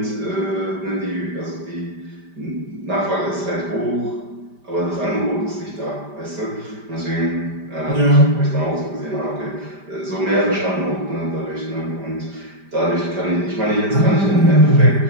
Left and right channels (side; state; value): left; late; 5.0 ms